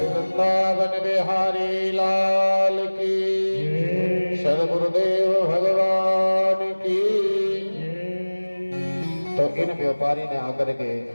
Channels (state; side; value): inverted; both; correlation -1.00